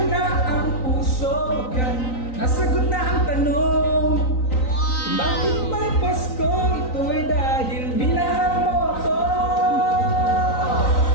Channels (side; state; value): right; late; 3.9 ms